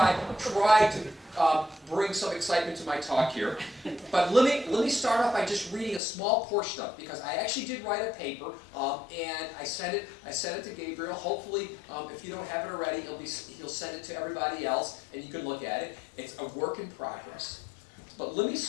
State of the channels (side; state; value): right; drops out; at 6.0 s